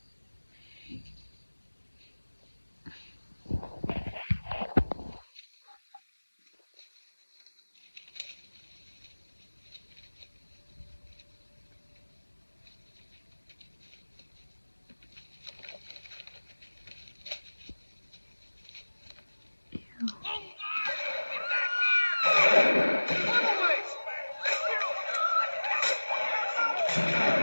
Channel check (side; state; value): both; inverted; correlation -1.00